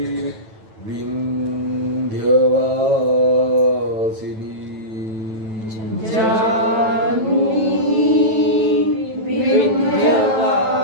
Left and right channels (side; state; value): left; late; 9.1 ms